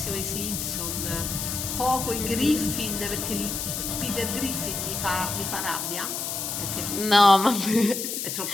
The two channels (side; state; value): left; noise; hiss, 3 dB below the sound